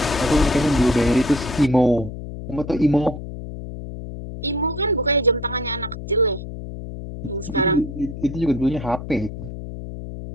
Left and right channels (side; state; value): left; noise; hum, 10 dB below the sound